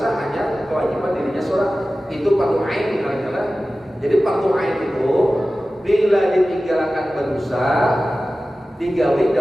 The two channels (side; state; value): both; normal; correlation 0.95